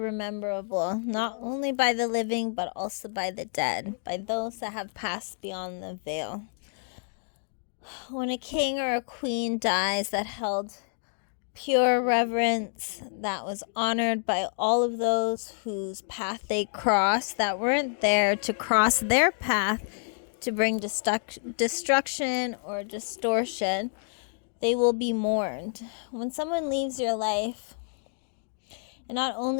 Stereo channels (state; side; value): silent; right; digital silence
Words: not only by the living, but also by the dead, by those that have passed beyond the veil. When a king or a queen dies that held pure reverence, that was honored by all of those whose path they crossed, that weren't there to cross their path to bring destruction or distortion, they will be mourned. When someone leaves your life, and not